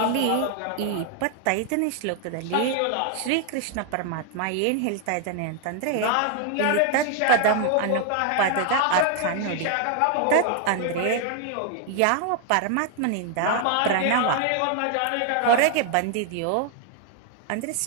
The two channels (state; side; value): different; both; correlation 0.00